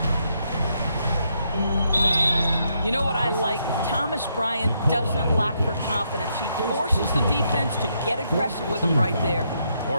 You know what I like? Thomas Bryant doesn't lack for confidence. He forces the defense to get aggressive with him right there.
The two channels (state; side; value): inverted; both; correlation -0.77